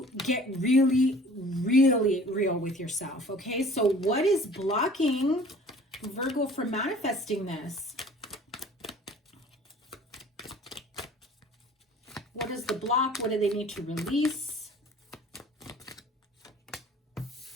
get really, really real with yourself, okay? So what is blocking Virgo from manifesting this? What is the block? What do they need to release?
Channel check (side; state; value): both; normal; correlation 0.49